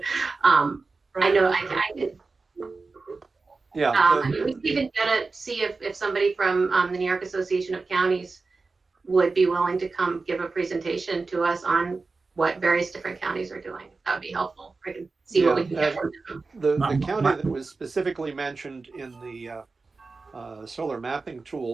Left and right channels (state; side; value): quieter; left; 4.0 dB